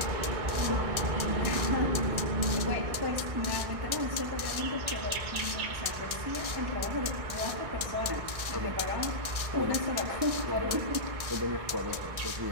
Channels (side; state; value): left; late; 1.4 ms